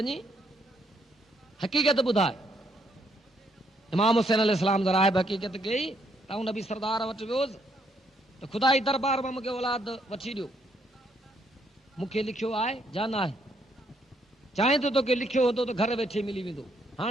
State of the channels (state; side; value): normal; both; correlation 0.72